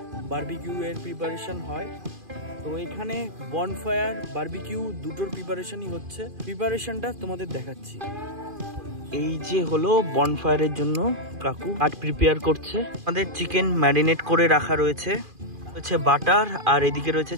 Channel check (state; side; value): late; left; 2.4 ms